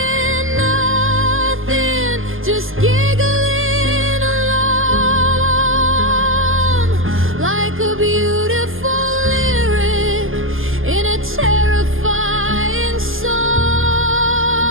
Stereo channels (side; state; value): left; late; 0.59 ms